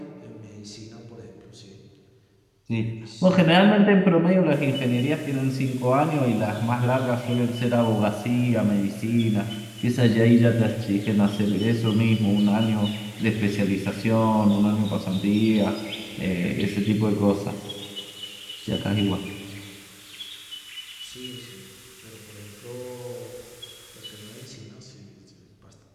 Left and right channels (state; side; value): identical; both; correlation 1.00